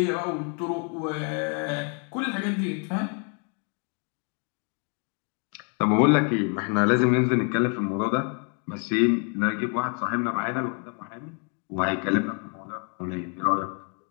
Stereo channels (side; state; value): right; quieter; 40.0 dB